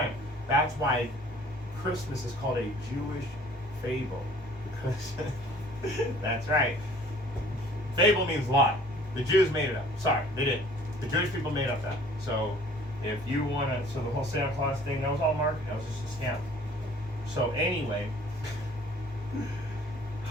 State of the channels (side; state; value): both; normal; correlation 0.53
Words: That's why Christmas is called a Jewish fable. Because that's right. Fable means lie. The Jews made it up. Sorry, they didn't. The Jewish people made up that. So if you want to, so the whole Santa Claus thing, that was all marketing. That was just a scam. So anyway,